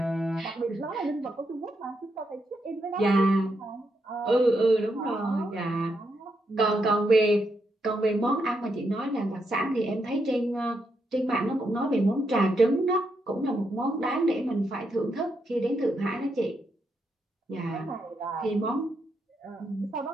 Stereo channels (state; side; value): normal; both; correlation 0.81